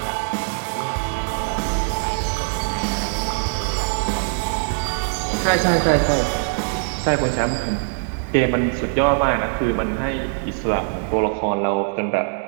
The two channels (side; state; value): left; silent; digital silence